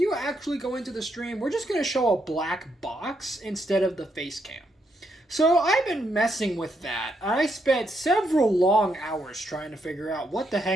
actually go into the stream, we're just going to show a black box instead of the face cam. So I've been messing with that. I spent several long hours trying to figure out what the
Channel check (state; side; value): normal; both; correlation 0.78